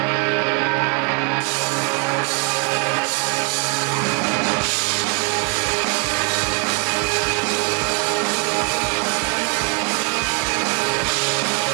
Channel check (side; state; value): left; quieter; 32.1 dB